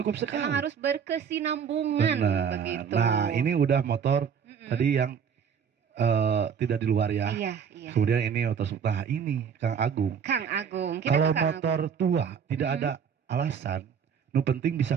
sekali. Memang harus berkesinambungan Benar. begitu. Nah, ini udah motor Mm-mm. tadi yang tidak di luar ya. Iya, iya. Kemudian ini motor nah ini Kang Agung. Kang Agung. Kita Kalau ke Kang motor tua tidak Mm-mm. ada alasan, nu penting bisa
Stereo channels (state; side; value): quieter; left; 7.2 dB